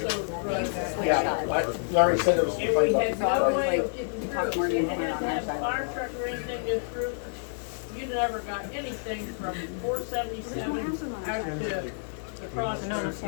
running that way. Yeah, Larry said there was And something we had about no the way car. of getting through. You didn't have to have a fire truck or anything get through. You never got anything from 477 out to the crossroads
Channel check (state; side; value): silent; right; digital silence